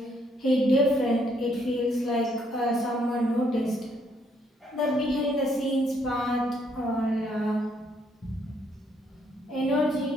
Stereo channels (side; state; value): both; normal; correlation 0.70